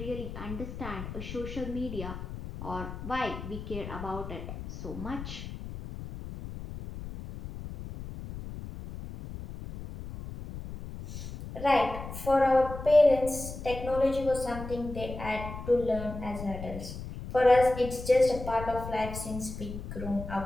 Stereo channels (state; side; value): noise; left; rumble, 9 dB below the sound